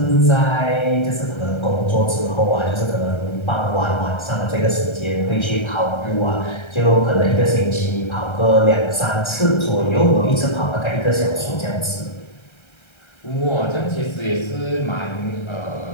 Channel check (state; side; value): late; right; 1.3 ms